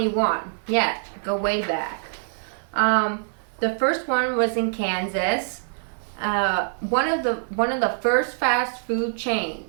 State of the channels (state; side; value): silent; left; 61 dB below the other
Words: Yeah, go way back. The first one was in Kansas. One of the first fast food